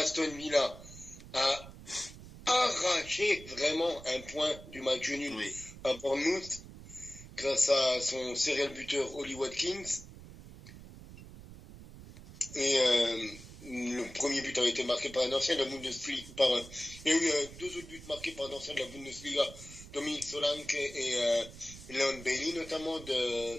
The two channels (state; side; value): noise; right; rumble, 16 dB below the sound